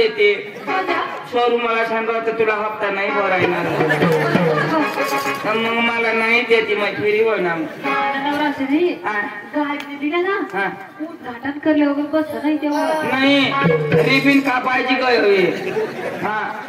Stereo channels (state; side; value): identical; both; correlation 1.00